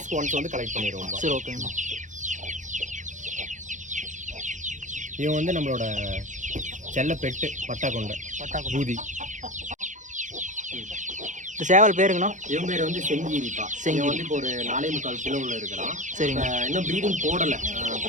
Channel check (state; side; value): late; left; 0.36 ms